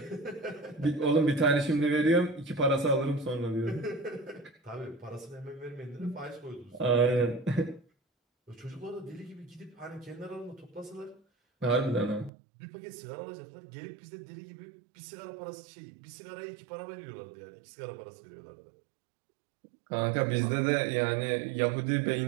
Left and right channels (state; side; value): drops out; left; at 12.3 s